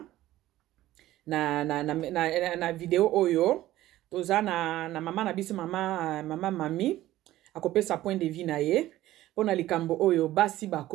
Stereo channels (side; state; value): left; quieter; 15.1 dB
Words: na video oyo toza na mama na biso mama mami akopesa point de vue na ye pona likambo oyo basi